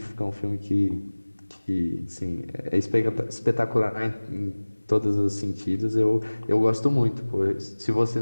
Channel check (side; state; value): both; inverted; correlation -1.00